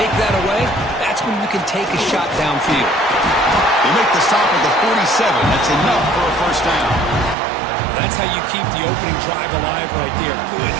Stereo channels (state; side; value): drops out; left; at 7.4 s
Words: that away, that's when you can take a shot downfield. They make the stop at the 47. That's enough for a first down. That's how you keep the opening drive alive right there. Good,